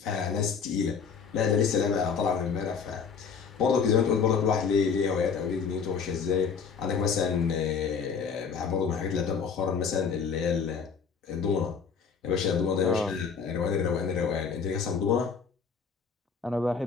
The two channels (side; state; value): right; quieter; 6.1 dB